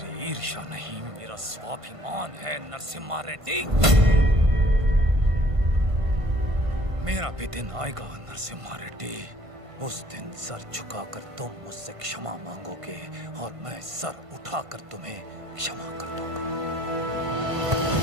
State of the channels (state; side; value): late; left; 1.5 ms